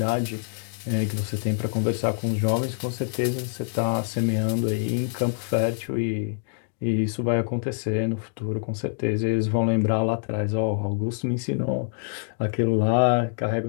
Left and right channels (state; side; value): silent; right; digital silence